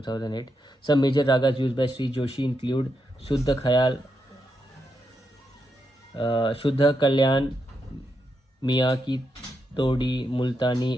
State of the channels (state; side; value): normal; both; correlation 0.83